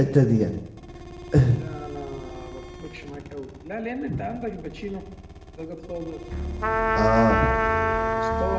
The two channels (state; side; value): identical; both; correlation 1.00